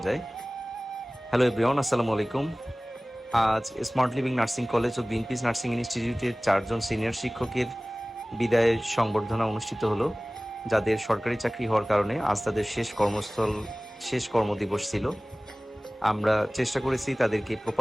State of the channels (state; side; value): normal; both; correlation 0.98